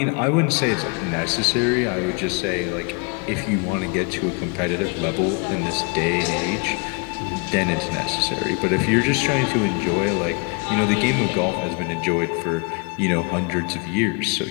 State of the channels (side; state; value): right; quieter; 33.4 dB